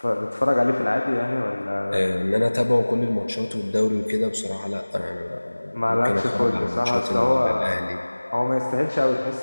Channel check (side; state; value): both; inverted; correlation -1.00